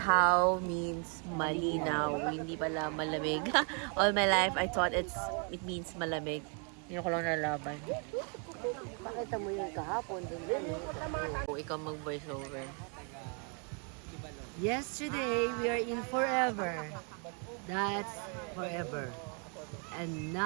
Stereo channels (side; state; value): left; quieter; 38.6 dB